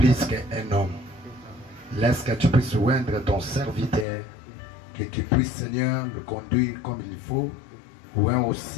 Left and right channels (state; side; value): drops out; right; at 4.0 s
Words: qu'un homme. Laisse que tu puisses oindre ton serviteur, que tu puisses, Seigneur, le conduire comme il faut, oint